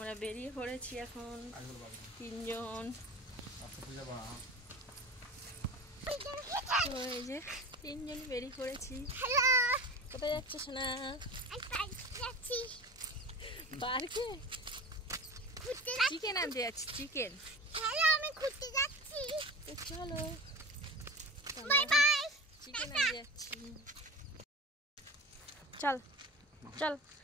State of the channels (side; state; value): both; normal; correlation 0.34